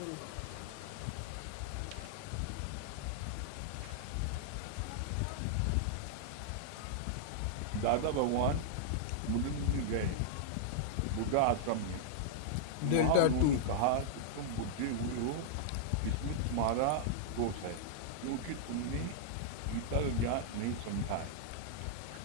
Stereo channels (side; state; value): both; different; correlation -0.02